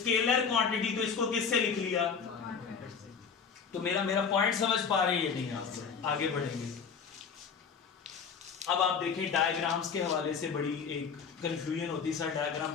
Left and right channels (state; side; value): quieter; right; 6.2 dB